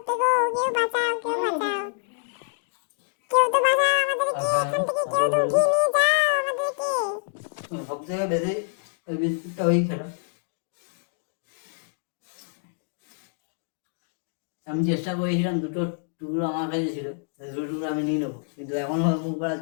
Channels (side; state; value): right; silent; digital silence